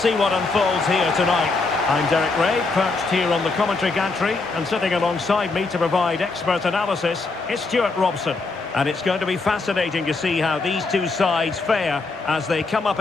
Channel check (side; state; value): right; quieter; 3.8 dB